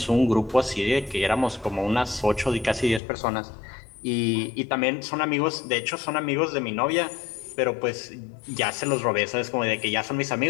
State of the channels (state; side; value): drops out; right; at 3.0 s